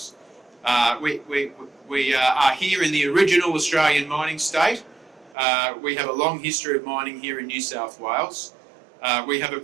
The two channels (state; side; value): drops out; left; at 5.4 s